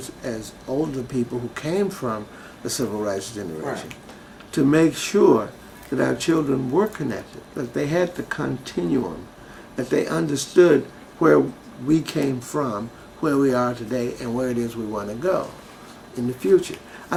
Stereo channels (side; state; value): both; identical; correlation 1.00